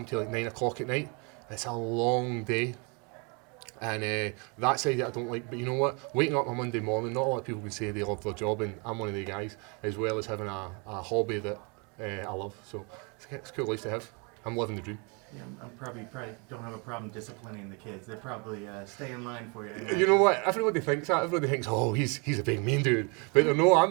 till like 9 o'clock at night, it's a long day. And that side that I don't like, but you know what? Waking up on Monday morning, not a lot of people can say they love their job, and I'm one of the guys, as well as having a hobby that I love. So it's a cool life to have. I'm living the dream. Yeah, I'm probably don't have a problem disciplining the kids. They probably stay in line for you. You know what? Everybody thinks that. Everybody thinks, oh, he's a big mean dude. But no, I'm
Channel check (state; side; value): quieter; left; 32.8 dB